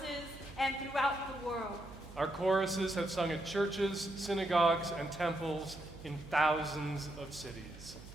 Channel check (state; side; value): noise; right; hum, 17 dB below the sound